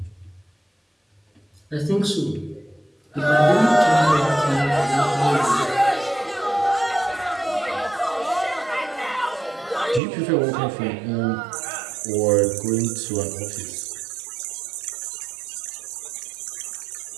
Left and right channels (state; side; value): drops out; left; at 10.0 s